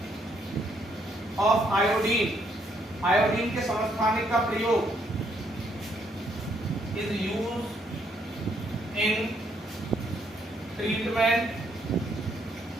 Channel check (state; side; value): normal; both; correlation 0.72